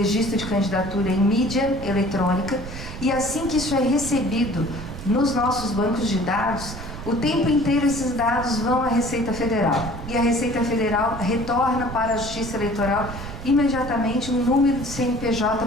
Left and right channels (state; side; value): noise; right; rumble, 10 dB below the sound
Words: de candidatura em mídia eletrônica e assim que isso é recebido nos nossos bancos de dados, o tempo inteiro esses dados vão à Receita Federal. E a Receita Federal retorna para a Justiça Eleitoral imediatamente um número de CNPJ